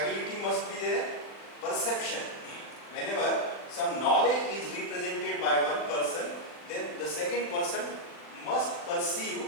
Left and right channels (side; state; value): right; late; 40 ms